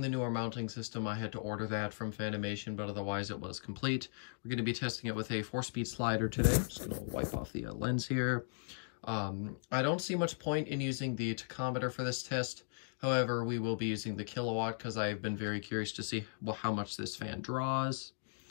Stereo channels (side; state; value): right; silent; digital silence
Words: the newer mounting system. I had to order that from Fanimation, but otherwise it was complete. We're going to be testing it with a 4-speed slider today. I'm just going to wipe off the lens here. I don't see much point in using the tachometer for this test. However, we will be using the kilowatt because I've been very curious to see how much this fan draws.